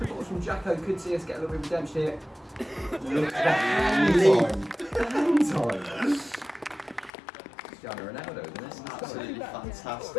from Jacko, could see us get a little bit of redemption here. Look at that hand time. Cristiano Ronaldo, isn't it? Absolutely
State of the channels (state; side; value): drops out; right; at 7.1 s